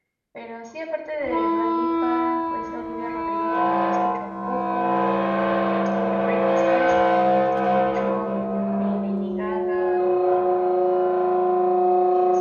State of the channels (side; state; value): both; identical; correlation 1.00